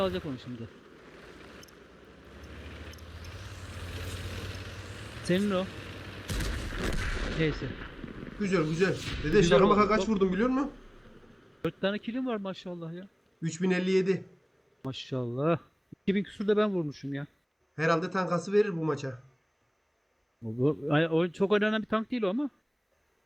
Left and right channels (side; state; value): both; identical; correlation 1.00